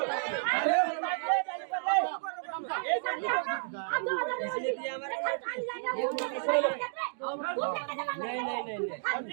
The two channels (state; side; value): silent; left; digital silence